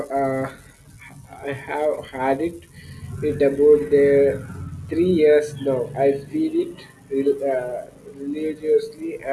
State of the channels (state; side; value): identical; both; correlation 1.00